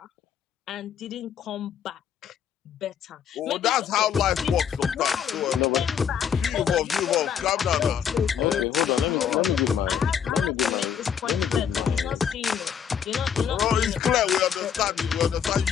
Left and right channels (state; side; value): quieter; right; 8.1 dB